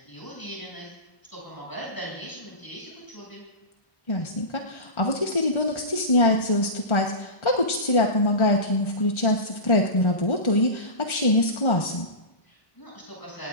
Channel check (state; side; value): late; right; 1.3 ms